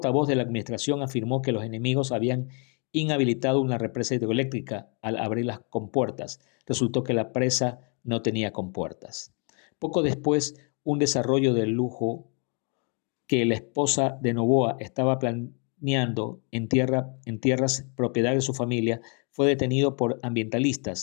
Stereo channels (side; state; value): right; quieter; 38.0 dB